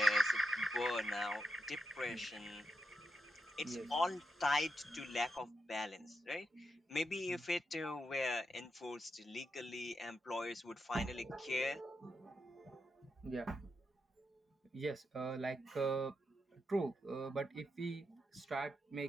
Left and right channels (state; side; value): normal; both; correlation 0.85